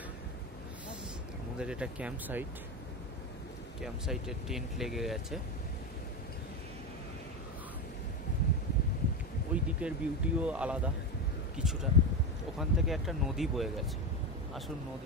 আমাদের এটা ক্যাম্প সাইটে টেন্ট লেগে গেছে। ওই দিকের বিউটিও আলাদা কিছুটা। ওখান থেকে একটা নদী বয়ে গেছে, আসুন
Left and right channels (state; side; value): normal; both; correlation 0.16